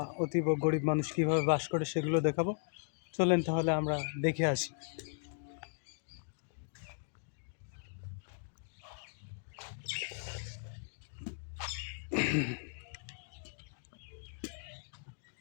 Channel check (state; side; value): silent; right; digital silence